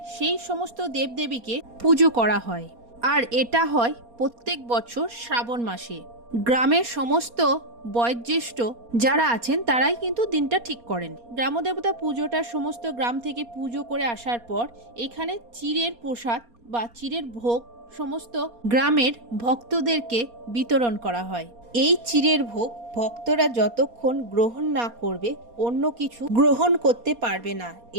সেই সমস্ত দেবদেবীকে পুজো করা হয়। আর এটা হয় প্রত্যেক বছর শ্রাবণ মাসে। গ্রামের সমস্ত বয়োজ্যেষ্ঠ যারা আছেন তারাই কিন্তু দিনটা ঠিক করেন। গ্রামদেবতা পুজোটা সমস্ত গ্রাম থেকে পুজো করে আসার পর এখানে চিড়ের প্রসাদ বা চিড়ের ভোগ সমস্ত গ্রামের ভক্তদেরকে বিতরণ করা হয়। এই চিড়ের ভোগ ভক্তরা যতক্ষণ গ্রহণ না করবে অন্য কিছু গ্রহণ করতে পারবে না।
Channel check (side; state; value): left; late; 4.2 ms